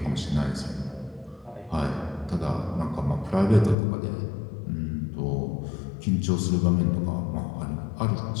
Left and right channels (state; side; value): drops out; right; at 3.8 s